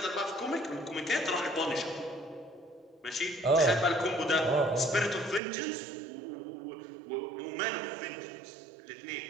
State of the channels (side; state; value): left; drops out; at 5.4 s